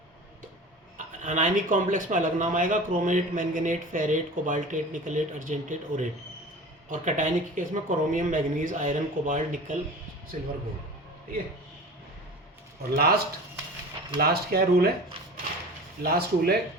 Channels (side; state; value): both; normal; correlation 0.37